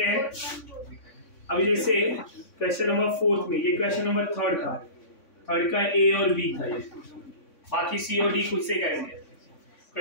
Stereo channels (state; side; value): late; right; 3.6 ms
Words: हैं। अभी जैसे क्वेश्चन नंबर 4 में, ये क्वेश्चन नंबर 3 का A और B था, ये बाकी C और D खुद से करेंगे।